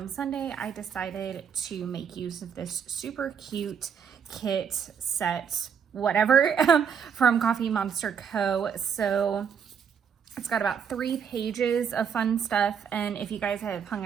Sunday, I decided to make use of this super cute kit set, whatever, from Coffee Monster Co. So it's got about 3 pages of fun stuff, and if you guys have hung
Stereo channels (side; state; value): left; quieter; 7.3 dB